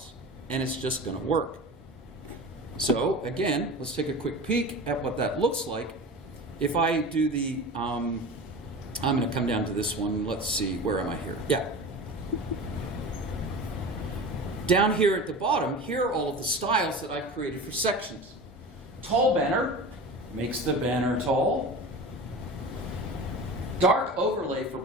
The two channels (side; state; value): both; normal; correlation 0.33